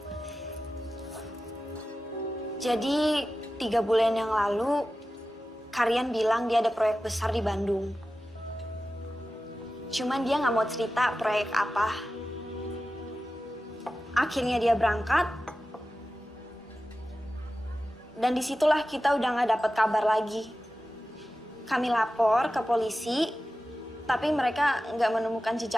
Jadi 3 bulan yang lalu, Karian bilang dia ada proyek besar di Bandung. Cuman dia nggak mau cerita proyek apa. Akhirnya dia berangkat. Dan disitulah kita udah nggak dapat kabar lagi. Kami lapor ke polisi, tapi mereka nggak menemukan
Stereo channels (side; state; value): both; normal; correlation 0.94